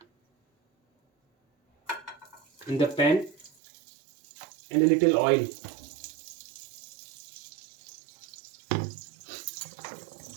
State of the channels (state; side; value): drops out; left; at 3.5 s